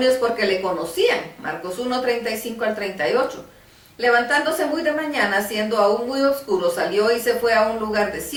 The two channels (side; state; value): both; identical; correlation 1.00